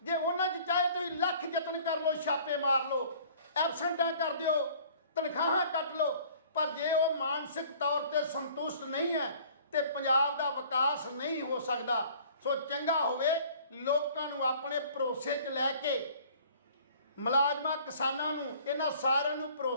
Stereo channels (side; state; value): both; inverted; correlation -0.52